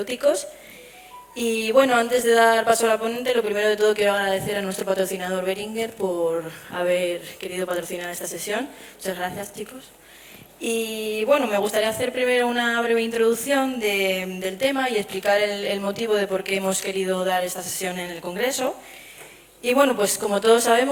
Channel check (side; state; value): both; identical; correlation 1.00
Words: Y bueno, antes de dar paso a la ponente, lo primero de todo quiero agradecer a nuestro patrocinador Boehringer por haber querido patrocinar esta sesión. Muchas gracias, chicos. Y bueno, me gustaría hacer primero una breve introducción del tema y explicar el motivo de por qué hemos querido dar esta sesión en el Congreso. Y bueno, pues como todos